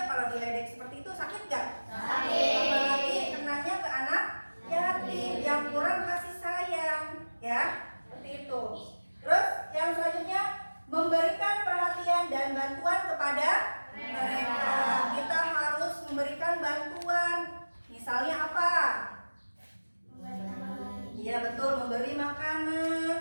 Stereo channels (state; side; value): inverted; both; correlation -1.00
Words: kalau diledek seperti itu sakit gak? Sakit. Apalagi kenanya ke anak yatim yang kurang kasih sayang, ya seperti itu. Terus yang selanjutnya, memberikan perhatian dan bantuan kepada mereka. Kita harus memberikan bantuan. Misalnya apa? Iya betul, memberi